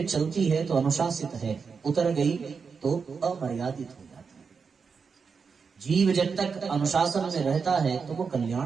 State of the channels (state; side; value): quieter; left; 5.5 dB